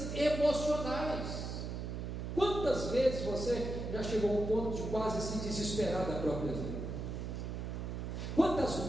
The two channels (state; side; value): noise; right; hum, 5 dB below the sound